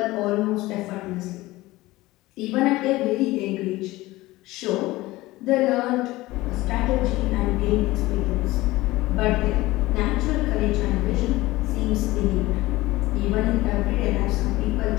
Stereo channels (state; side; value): quieter; right; 18.8 dB